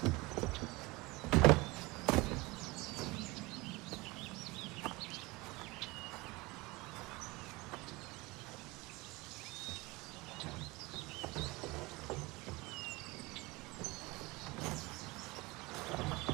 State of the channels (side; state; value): left; quieter; 23.0 dB